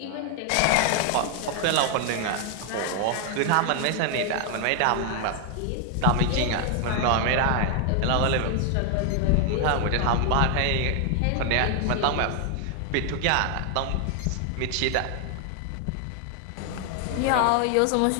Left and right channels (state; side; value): different; both; correlation 0.00